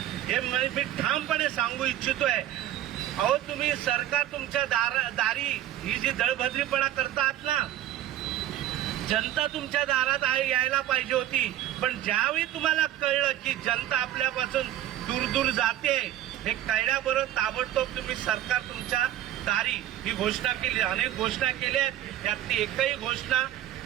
हे मी ठामपणे सांगू इच्छितोय. अहो तुम्ही सरकार तुमच्या दारी ही जी दळभद्रीपणा करतात ना, जनता तुमच्या दारात यायला पाहिजे होती. पण ज्यावेळी तुम्हाला कळलं की जनता आपल्यापासून दूर दूर जाते हे कळल्याबरोबर ताबडतोब तुम्ही सरकार तुमच्या दारी ही घोषणा केली. अनेक घोषणा केल्या आहेत, यातली एकही घोषणा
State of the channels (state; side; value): quieter; left; 12.5 dB